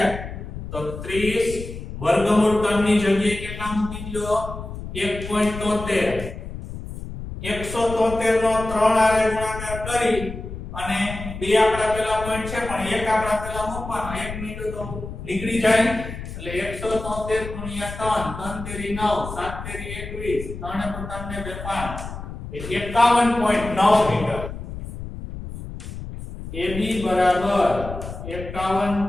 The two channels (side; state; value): left; noise; rumble, 9 dB below the sound